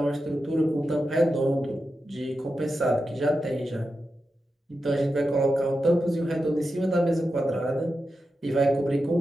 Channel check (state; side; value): normal; both; correlation 0.90